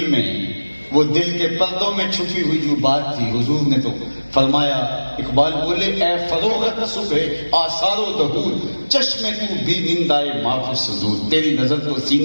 میں, وہ دل کے پردوں میں چھپی ہوئی جو بات تھی, حضور نے تو فرمایا, اقبال بولے اے فروغت صبح آثار و ظہور, چشمے تو بھی نندائے معاف صدور, تیری نظر تو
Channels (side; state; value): both; inverted; correlation -1.00